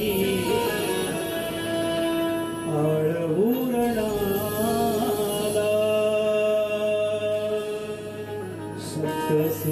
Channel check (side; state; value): both; identical; correlation 1.00